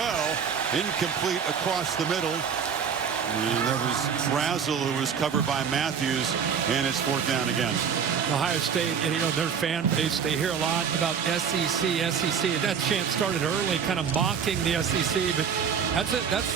Incomplete across the middle. And there was Brazel, who was covered by Matthews, and it's 4th down again. Ohio State, and their fan base, they hear a lot about SEC. That chant started early, kind of mocking the SEC, but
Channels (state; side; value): quieter; left; 7.1 dB